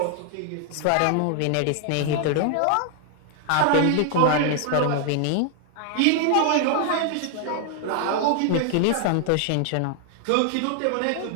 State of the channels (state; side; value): different; both; correlation 0.00